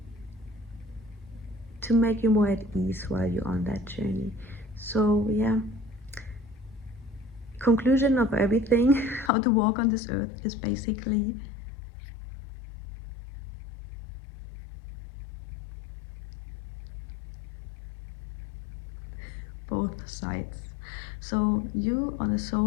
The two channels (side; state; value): right; drops out; at 9.3 s